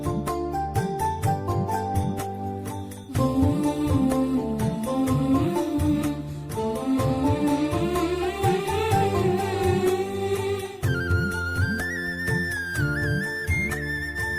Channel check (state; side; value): identical; both; correlation 1.00